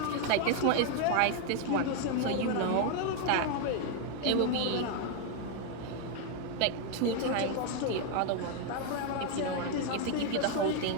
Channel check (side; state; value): both; different; correlation 0.00